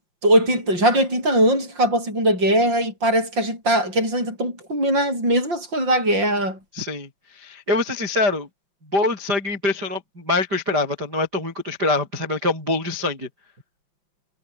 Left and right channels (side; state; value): left; late; 5.7 ms